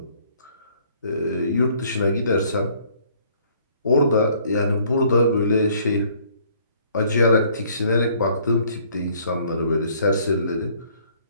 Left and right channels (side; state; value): both; inverted; correlation -0.60